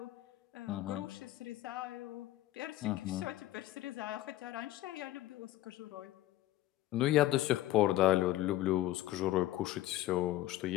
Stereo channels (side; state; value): right; quieter; 15.2 dB